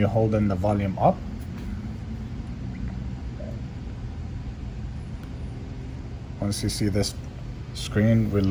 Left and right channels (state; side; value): identical; both; correlation 1.00